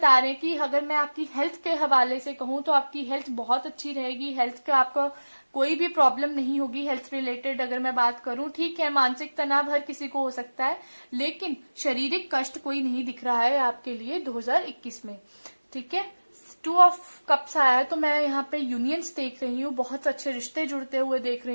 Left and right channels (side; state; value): both; inverted; correlation -1.00